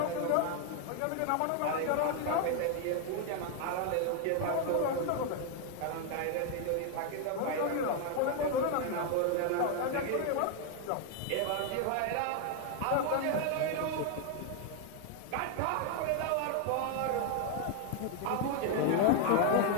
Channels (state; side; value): different; both; correlation 0.00